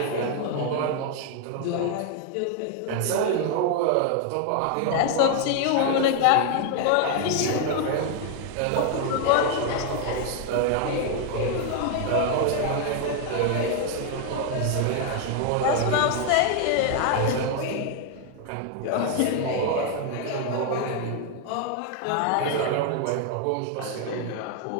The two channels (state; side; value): different; both; correlation 0.00